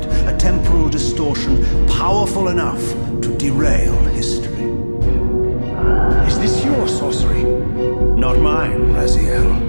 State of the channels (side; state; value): both; inverted; correlation -1.00